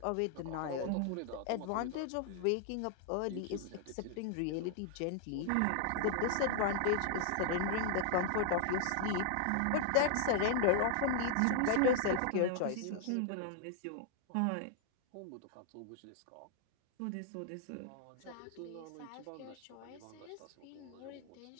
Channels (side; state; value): both; different; correlation 0.00